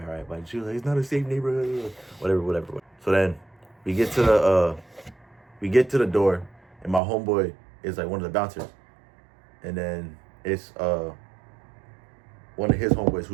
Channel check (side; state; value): left; drops out; at 7.0 s